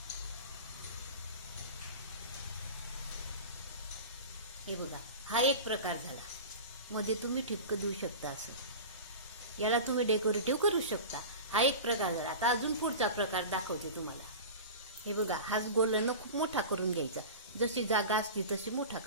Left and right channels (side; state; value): both; inverted; correlation -0.31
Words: हे बघा, हा एक प्रकार झाला. मध्ये तुम्ही ठिपकं देऊ शकता. असं याला तुम्ही डेकोरेटिव्ह करू शकता. हा एक प्रकार झाला. आता अजून पुढचा प्रकार दाखवते तुम्हाला. हे बघा, हाच गोलन खूप मोठा करून घ्यायचा. जशी जागा असती तशी मोठा